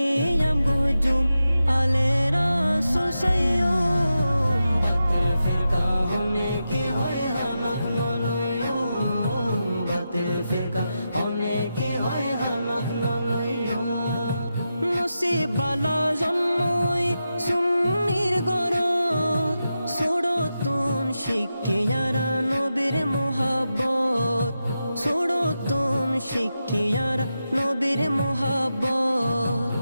gojum alera susayo batil firqa hone ki hoy hamak naloyo batil firqa hone ki hoy hamak naloyo নসিবালা জন্মই সুন্নির গরত ছোড়তুন শিখিয়ারা নবীর মোহাব্বত ছোড়তুন শিখিয়ারা নবীর মোহাব্বত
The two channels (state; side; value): inverted; both; correlation -0.89